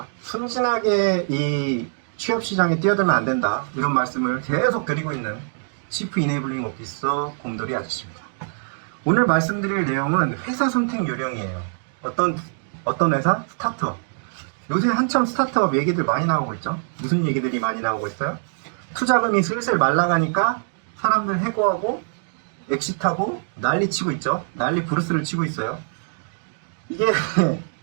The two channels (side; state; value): left; silent; digital silence